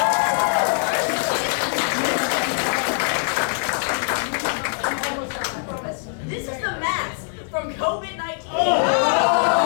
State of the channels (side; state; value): right; silent; 62 dB below the other